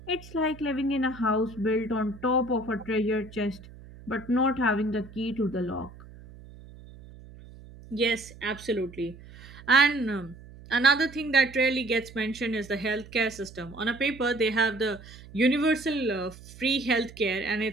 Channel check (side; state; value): right; noise; hum, 19 dB below the sound